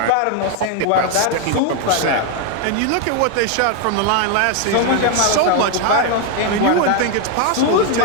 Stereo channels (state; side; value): different; both; correlation 0.01